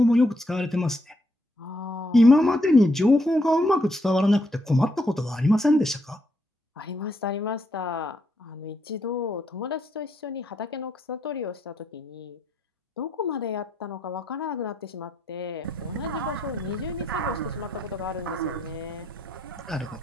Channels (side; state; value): both; normal; correlation 0.76